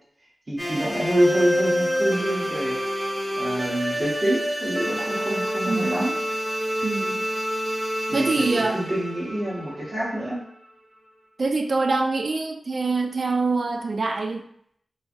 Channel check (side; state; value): both; normal; correlation 0.95